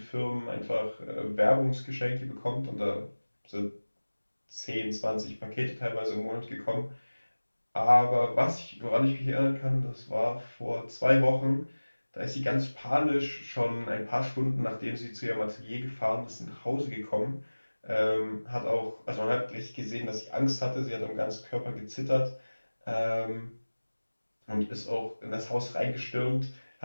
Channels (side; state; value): both; inverted; correlation -1.00